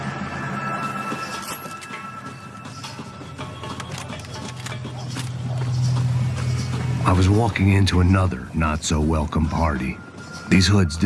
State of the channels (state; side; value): identical; both; correlation 1.00